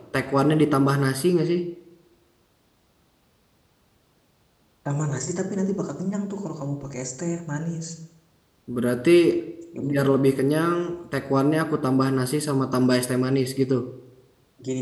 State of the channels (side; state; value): both; identical; correlation 1.00